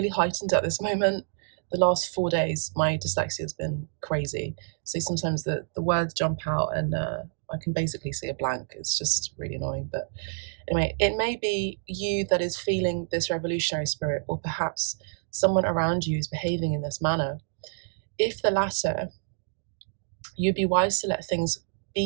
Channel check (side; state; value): left; silent; digital silence